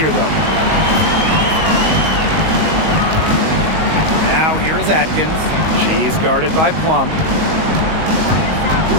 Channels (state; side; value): late; left; 19 ms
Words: though. Now here is Atkins. She's guarded by Plum.